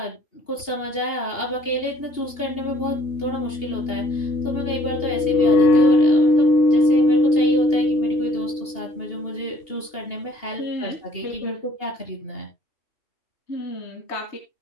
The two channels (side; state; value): right; late; 2.8 ms